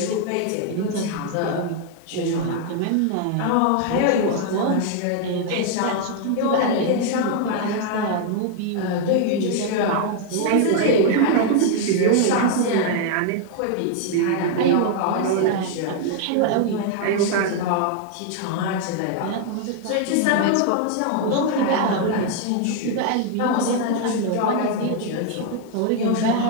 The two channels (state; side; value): different; both; correlation 0.00